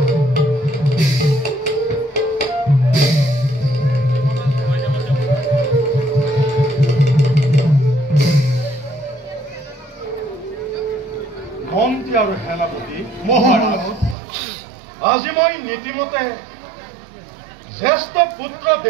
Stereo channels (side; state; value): left; drops out; at 14.2 s